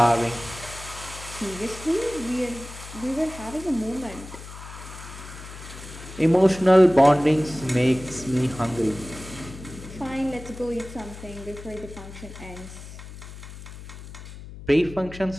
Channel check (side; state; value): left; noise; hum, 14 dB below the sound